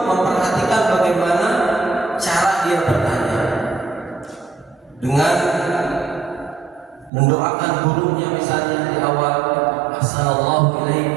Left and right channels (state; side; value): drops out; left; at 7.1 s